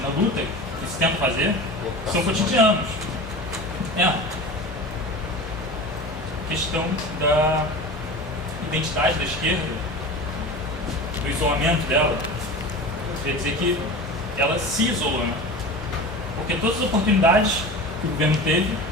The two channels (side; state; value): both; normal; correlation 0.32